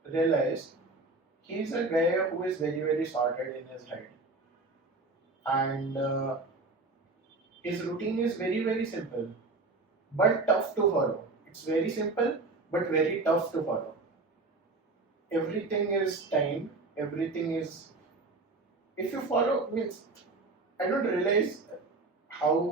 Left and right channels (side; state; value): left; quieter; 3.5 dB